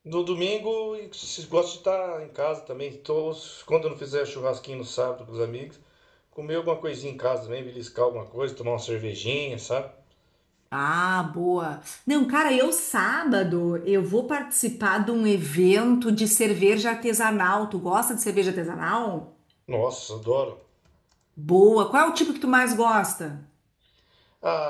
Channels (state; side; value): identical; both; correlation 1.00